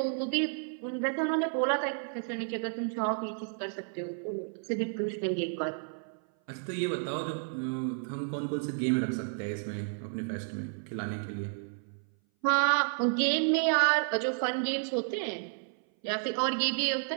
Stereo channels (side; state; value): left; silent; 57 dB below the other